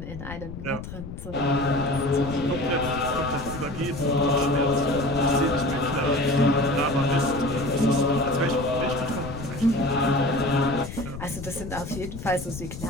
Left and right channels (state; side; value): noise; left; rumble, 10 dB below the sound